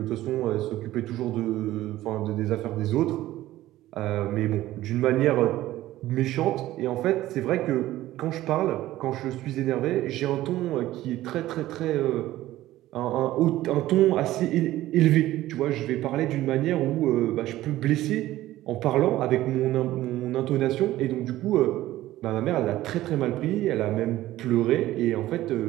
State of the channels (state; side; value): quieter; left; 15.3 dB